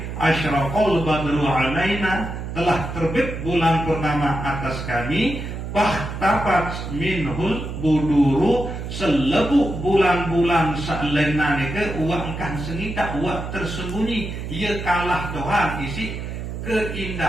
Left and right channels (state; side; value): noise; right; hum, 6 dB below the sound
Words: asyraqal badru alaina telah terbit bulan purnama atas kami. Fahtafat minhul buduru selebu bulan-bulan sa'lena nike uang kan sengita uang tersembunyi ia kalah Tuhan isi